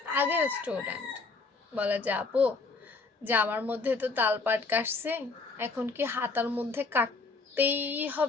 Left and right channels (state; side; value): quieter; right; 4.0 dB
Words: আগের স্টুডেন্ট বলে যে আপু, যে আমার মধ্যে তো তালপাট কাটছে, এখন কি হাতার মধ্যে কাটতেই